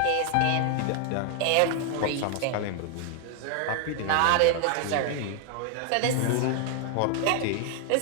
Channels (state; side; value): different; both; correlation 0.00